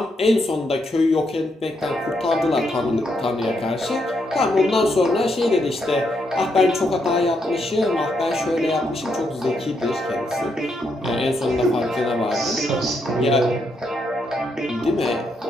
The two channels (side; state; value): both; normal; correlation 0.78